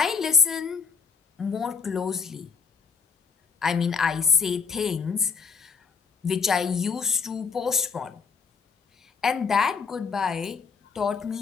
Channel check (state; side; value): quieter; right; 5.5 dB